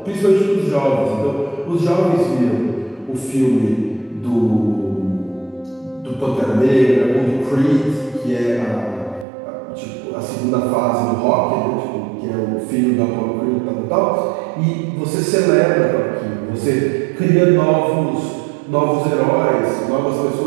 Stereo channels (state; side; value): drops out; left; at 9.2 s